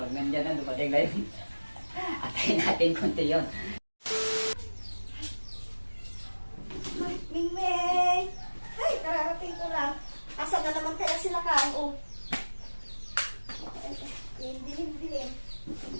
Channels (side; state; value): both; inverted; correlation -1.00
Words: Pag nandiyan na, dumating na yun. Atayin natin konti yun. Mingming! Ay, kararating ko lang. Asa na naman kaya sila kain, oh. Dilim-dilim.